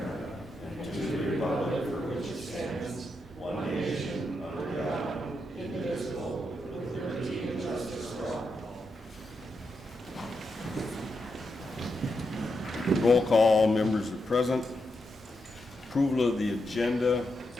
and to the republic for which it stands, one nation, under God, indivisible, with liberty and justice for all. Roll call, members are present. Approval of the agenda.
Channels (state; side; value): normal; both; correlation 0.84